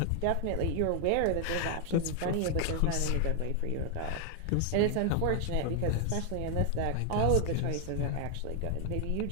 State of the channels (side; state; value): both; different; correlation 0.00